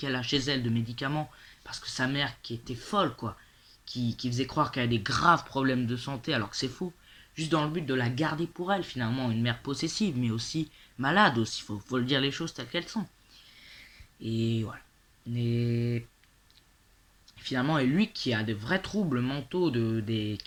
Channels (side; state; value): both; identical; correlation 1.00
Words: a chez elle de médicaments, parce que sa mère qui était folle quoi, qui faisait croire qu'elle a des graves problèmes de santé alors que c'est faux, juste dans le but de la garder pour elle finalement, une mère possessive, mais aussi malade aussi, faut le dire les choses telles qu'elles sont. Et voilà. Et finalement, et lui qui a de vrais troubles mentaux,